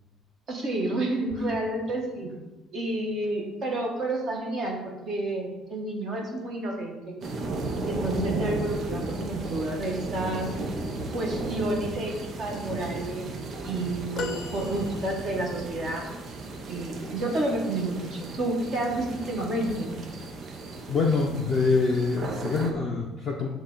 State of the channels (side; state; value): both; normal; correlation 0.59